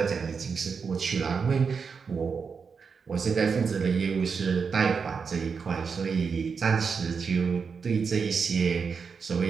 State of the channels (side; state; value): left; quieter; 5.6 dB